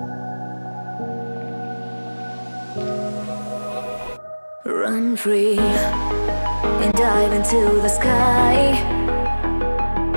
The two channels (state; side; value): inverted; both; correlation -1.00